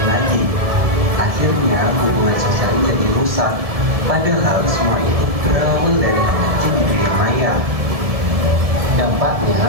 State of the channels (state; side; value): late; left; 1.7 ms